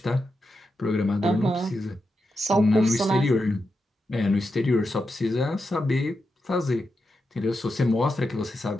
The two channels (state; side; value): normal; both; correlation 0.87